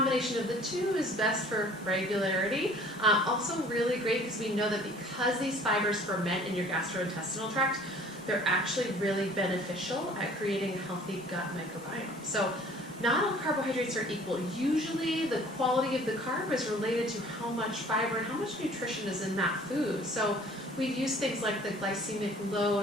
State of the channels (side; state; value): both; normal; correlation 0.52